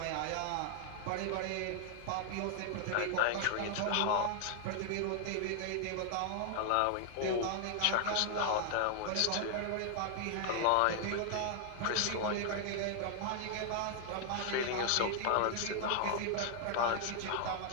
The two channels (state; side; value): different; both; correlation 0.00